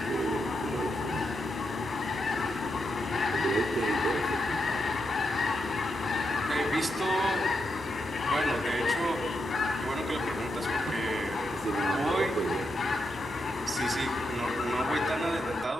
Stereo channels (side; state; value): both; normal; correlation 0.84